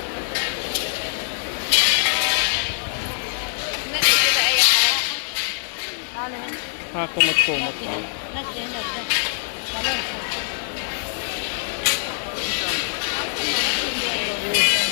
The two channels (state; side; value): silent; right; 57 dB below the other